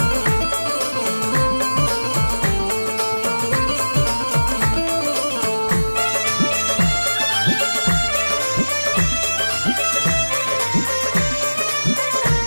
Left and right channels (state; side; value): inverted; both; correlation -1.00